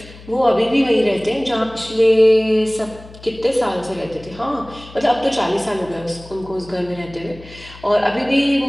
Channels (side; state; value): left; noise; hum, 19 dB below the sound